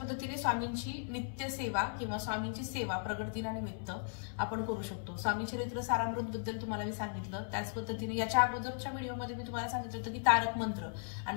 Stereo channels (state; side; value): silent; right; digital silence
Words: स्वामींची नित्य सेवा किंवा स्वामींची सेवा प्रगट दिनानिमित्त आपण करू शकतो. स्वामी चरित्र सारामृत बद्दल तुम्हाला मी सांगितलं, त्याच पद्धतीने याच्या अगोदरच्या व्हिडिओमध्ये मी तुम्हाला सांगितलं होतं की तारक मंत्र